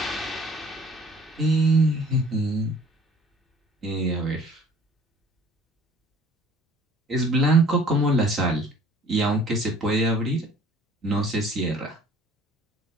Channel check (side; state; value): both; normal; correlation 0.52